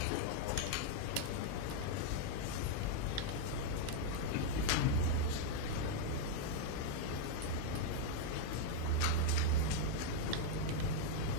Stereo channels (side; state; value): both; different; correlation -0.01